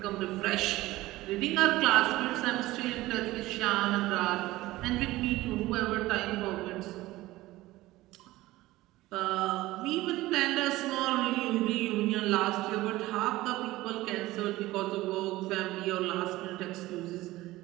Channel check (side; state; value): left; quieter; 17.9 dB